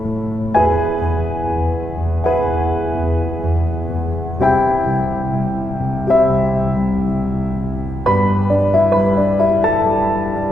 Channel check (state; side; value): noise; left; rumble, 12 dB below the sound